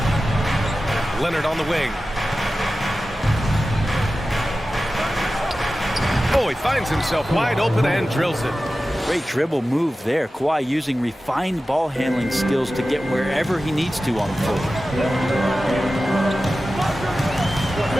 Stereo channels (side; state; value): both; normal; correlation 0.94